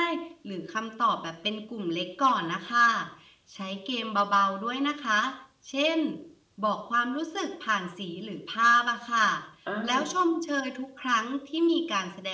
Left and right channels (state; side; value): identical; both; correlation 1.00